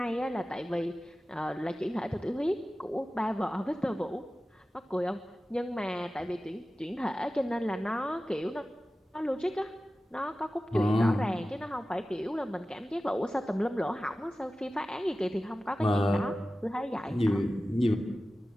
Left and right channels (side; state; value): both; normal; correlation 0.95